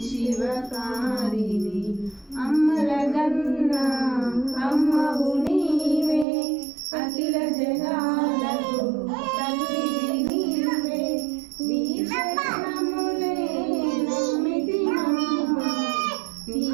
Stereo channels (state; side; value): drops out; left; at 6.2 s